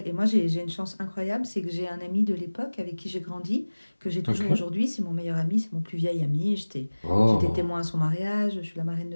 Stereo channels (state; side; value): inverted; both; correlation -1.00